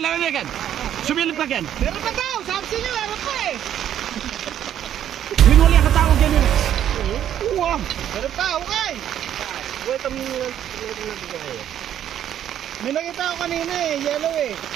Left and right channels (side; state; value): left; quieter; 10.5 dB